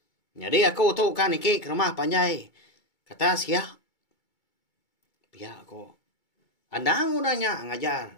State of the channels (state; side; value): late; right; 2.3 ms